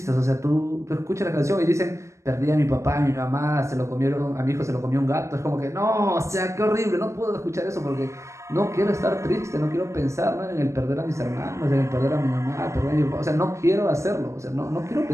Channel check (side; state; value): left; late; 0.14 ms